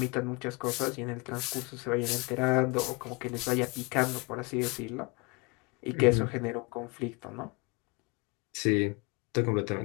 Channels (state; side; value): quieter; right; 28.4 dB